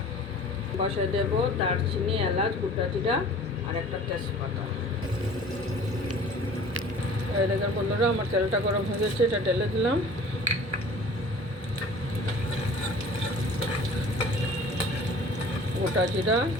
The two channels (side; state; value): both; normal; correlation 0.46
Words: বসে দেব দারচিনি, এলাচ, গোটা জিরা আর একটা তেজপাতা। এই দেখেন বন্ধুরা, আমার তেলটা গরম হয়ে গেছে, এটা ঢেলে দিলাম। গোটা জিরা,